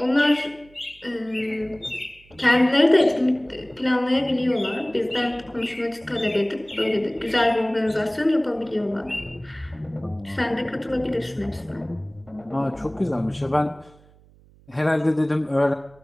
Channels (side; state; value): right; noise; hum, 27 dB below the sound